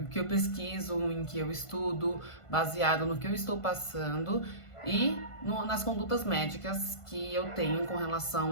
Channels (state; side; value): late; right; 1.5 ms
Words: que eu pesquiso, em que eu estudo, baseado no que eu estou passando e nas condutas médicas que eu tenho com